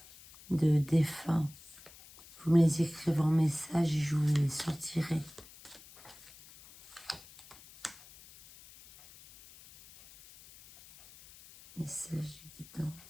de défunts, vous me les écrivez en message et je vous les sortirai. Message de guidance.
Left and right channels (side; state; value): left; noise; hiss, 21 dB below the sound